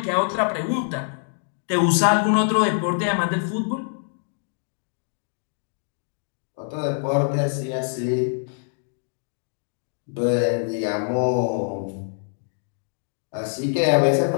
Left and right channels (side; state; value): right; silent; digital silence